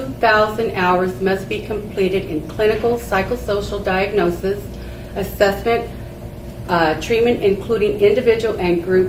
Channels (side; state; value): both; identical; correlation 1.00